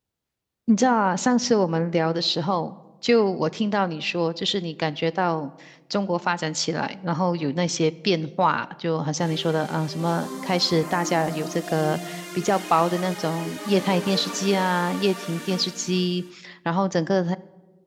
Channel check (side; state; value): both; identical; correlation 1.00